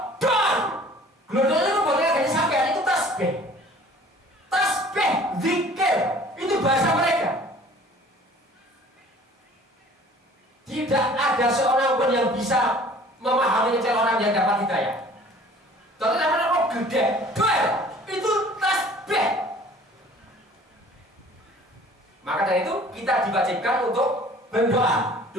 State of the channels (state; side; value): normal; both; correlation 0.50